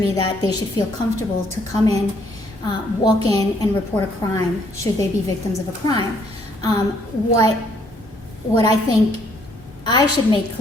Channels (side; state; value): both; normal; correlation 0.67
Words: that they should feel comfortable to come in, walk in, and report a crime should they be victims of a crime. What I think I should make